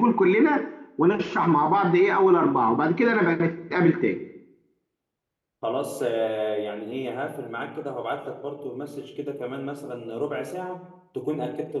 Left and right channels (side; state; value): both; identical; correlation 1.00